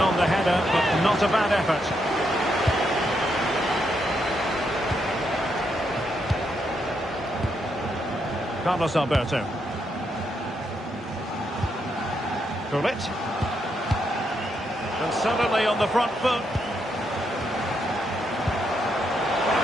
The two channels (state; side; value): normal; both; correlation 0.79